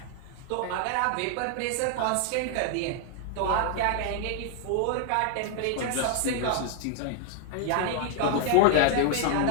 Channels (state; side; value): different; both; correlation 0.00